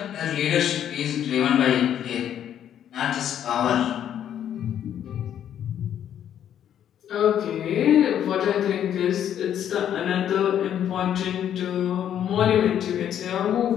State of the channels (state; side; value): quieter; right; 10.0 dB